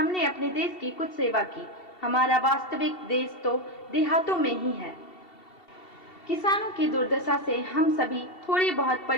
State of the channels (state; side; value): late; right; 2.7 ms